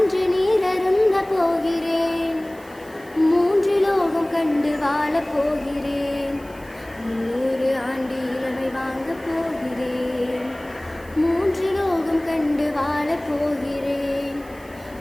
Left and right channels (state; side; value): noise; right; hiss, 25 dB below the sound